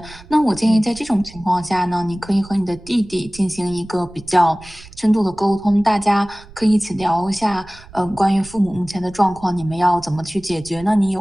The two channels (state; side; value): noise; right; rumble, 20 dB below the sound